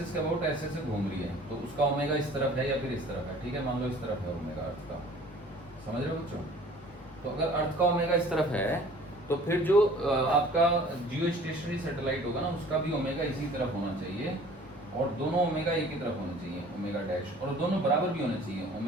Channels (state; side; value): normal; both; correlation 0.49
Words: के अबाउट ऐसे ऐसे घूम रही है, तो उसका ओमेगा इस तरफ है या फिर इस तरफ है, ठीक है। मान लो इस तरफ है ओमेगा अर्थ का, समझ रहे हो बच्चों। तो अगर अर्थ का ओमेगा इस तरफ है तो फिर जो आपका जियो स्टेशनरी सैटेलाइट होगा ना उसका भी ओमेगा इसी तरफ होना चाहिए, और दोनों ओमेगा एक ही तरफ होना चाहिए, ओमेगा डैश, और दोनों बराबर भी होने चाहिए,